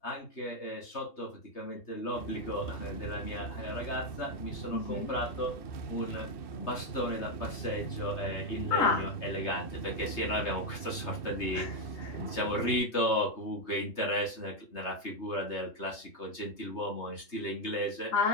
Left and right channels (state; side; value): late; right; 3.3 ms